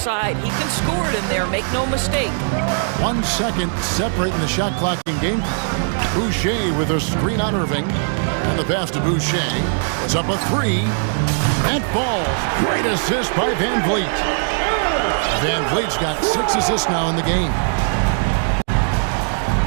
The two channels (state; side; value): silent; left; 60 dB below the other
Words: He can score it in there, make no mistake. 1 second separating the shot clock in game. Boucher with a screen on Irving. And the pass to Boucher was up a 3. And falls. Great assist by Van Vliet. Van Vliet's got 6 assists now in the game.